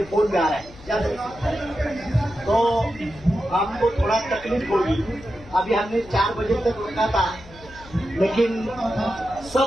फोन में आ रहा है, याद है। तो आपको थोड़ा तकलीफ होगी। अभी हमने 4 बजे तक रुका था, लेकिन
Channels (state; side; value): noise; left; hum, 20 dB below the sound